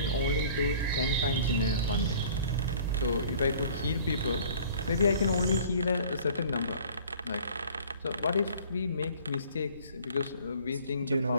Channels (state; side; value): inverted; both; correlation -0.50